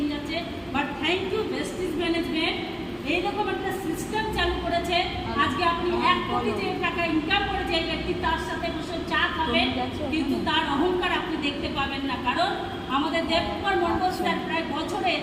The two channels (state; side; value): identical; both; correlation 1.00